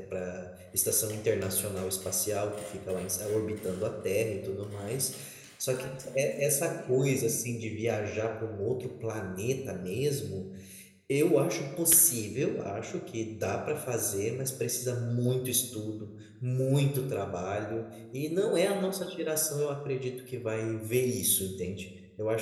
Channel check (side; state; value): both; identical; correlation 1.00